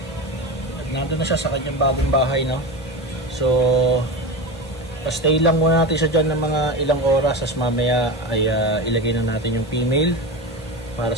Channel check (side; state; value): both; normal; correlation 0.24